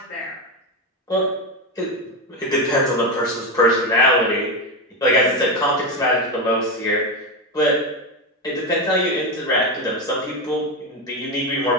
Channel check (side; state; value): both; normal; correlation 0.13